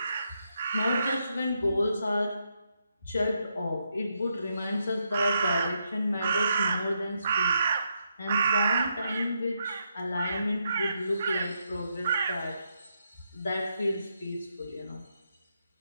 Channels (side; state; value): both; inverted; correlation -0.80